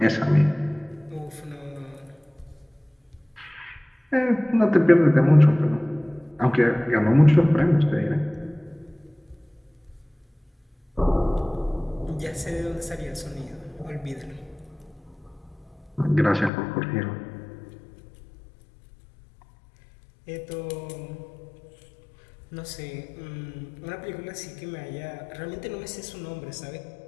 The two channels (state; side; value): drops out; right; at 16.5 s